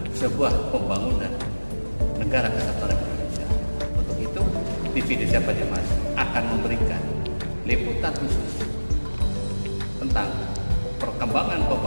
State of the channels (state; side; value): inverted; both; correlation -1.00